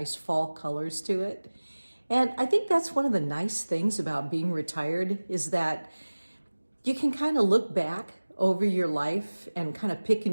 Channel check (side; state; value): both; inverted; correlation -1.00